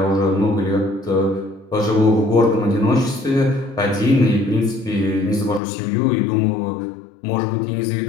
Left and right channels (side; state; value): right; drops out; at 5.6 s